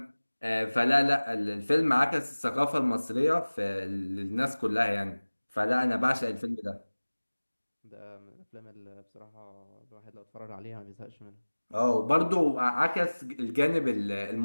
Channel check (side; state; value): both; inverted; correlation -1.00